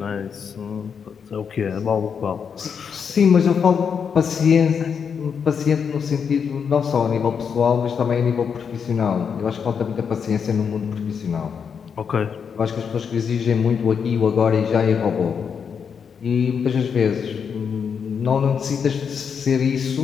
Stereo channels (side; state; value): right; quieter; 6.7 dB